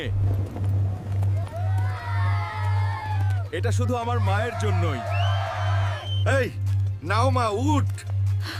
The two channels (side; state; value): both; identical; correlation 1.00